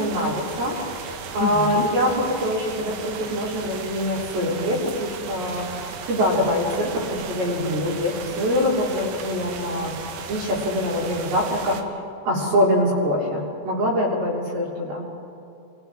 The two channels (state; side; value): late; left; 14 ms